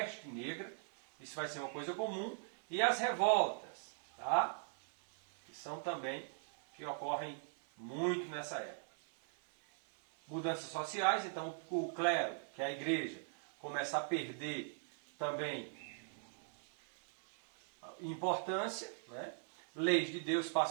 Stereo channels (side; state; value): left; silent; 51 dB below the other